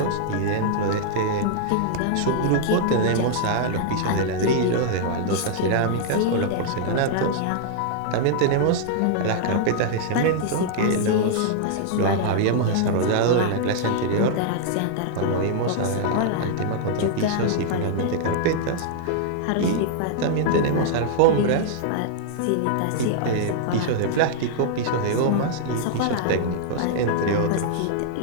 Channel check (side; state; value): both; different; correlation -0.01